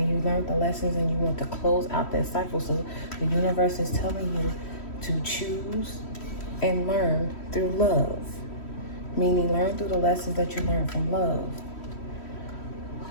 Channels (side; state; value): right; late; 3.1 ms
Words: you learned the lessons and you want to close out that cycle. So the universe is telling you to choose and learn through love. Meaning learn through the lessons that you learned from love.